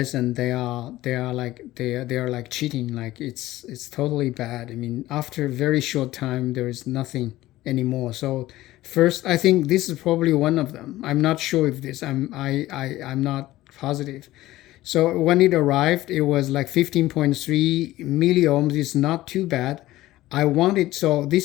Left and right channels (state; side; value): quieter; right; 16.4 dB